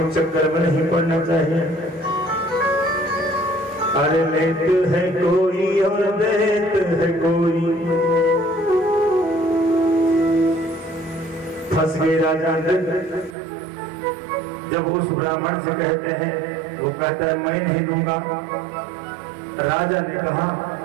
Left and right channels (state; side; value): drops out; left; at 13.4 s